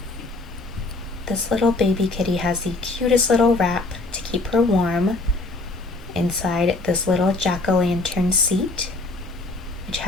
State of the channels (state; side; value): quieter; right; 3.1 dB